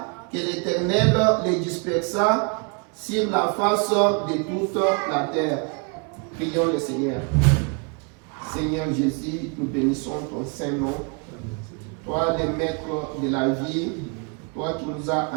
que l'Éternel les dispersa sur la face de toute la terre. Prions le Seigneur. Seigneur Jésus, nous bénissons ton Saint-Nom. Toi, le maître de la vie, toi qui nous as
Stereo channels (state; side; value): quieter; left; 33.8 dB